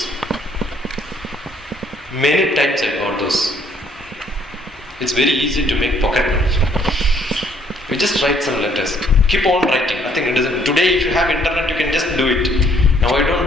Many times I got those. It's very easy to make pocket money. You just write some letters. Keep on writing. Nothing it doesn't. Today if you have internet, you can just do it. Now I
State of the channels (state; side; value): normal; both; correlation 0.65